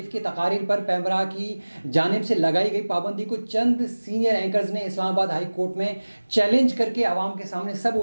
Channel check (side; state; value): both; inverted; correlation -1.00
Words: की तकारीर पर पैमरा की जानिब से लगाई गई पाबंदी को चंद सीनियर एंकर्स ने इस्लामाबाद हाई कोर्ट में चैलेंज करके आवाम के सामने सब